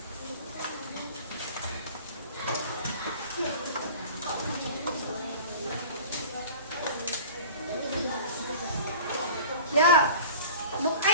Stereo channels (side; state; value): both; inverted; correlation -0.41